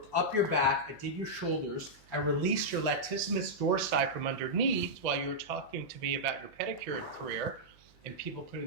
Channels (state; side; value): noise; right; hum, 29 dB below the sound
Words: up your back, I did your shoulders, I released your latissimus dorsi from underneath while you were talking to me about your pedicure career and people putting